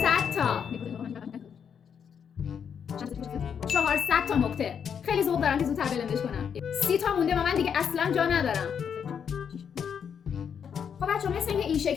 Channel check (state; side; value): quieter; right; 7.5 dB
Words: تا. 400 تا نقطه. خیلی ذوق دارم که زودتر بلندش کنم. 30 تا مونده و من دیگه اصلا جا ندارم. خب بچه‌ها مثل اینکه این